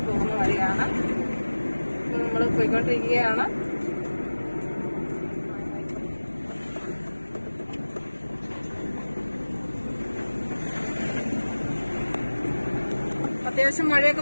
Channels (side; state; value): both; inverted; correlation -1.00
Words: പോകുന്ന വഴിയാണ് നമ്മള് പോയിക്കൊണ്ടിരിക്കുകയാണ്. അത്യാവശ്യം മഴയൊക്കെ